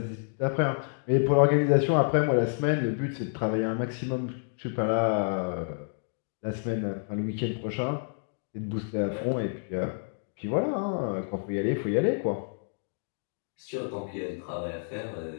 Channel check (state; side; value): silent; right; digital silence